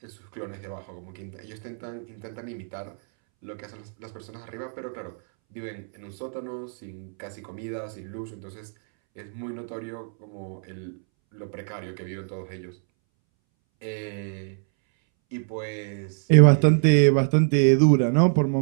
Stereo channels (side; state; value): left; silent; 61 dB below the other